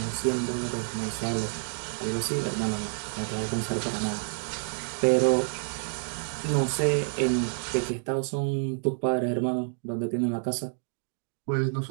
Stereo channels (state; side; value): silent; left; digital silence